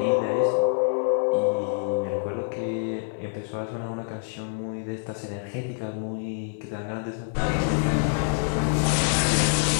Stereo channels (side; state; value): right; silent; 61 dB below the other